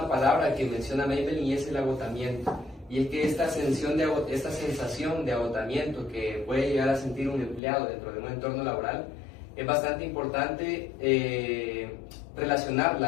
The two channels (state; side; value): drops out; right; at 7.6 s